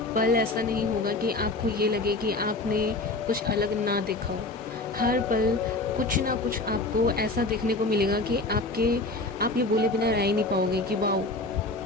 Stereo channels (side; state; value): right; quieter; 3.1 dB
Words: पल ऐसा नहीं होगा कि आपको ये लगे कि आपने कुछ अलग ना देखा हो। हर पल कुछ ना कुछ आपको ऐसा देखने को मिलेगा कि आप ये बोले बिना रह ही नहीं पाओगे कि वाओ